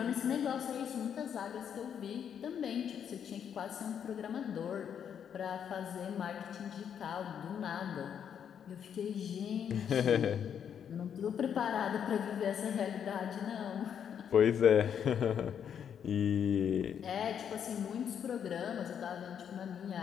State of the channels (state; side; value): quieter; right; 8.3 dB